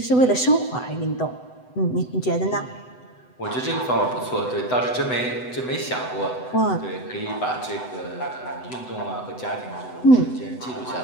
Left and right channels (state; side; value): late; right; 7.9 ms